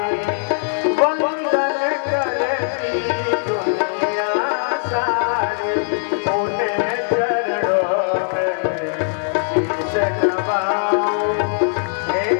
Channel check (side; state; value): right; silent; digital silence